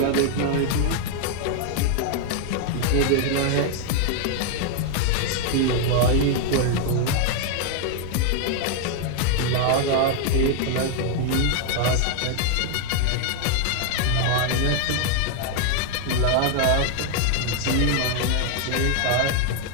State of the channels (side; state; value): both; different; correlation 0.00